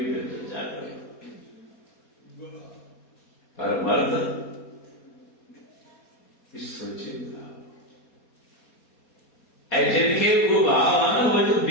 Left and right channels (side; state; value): right; late; 4.2 ms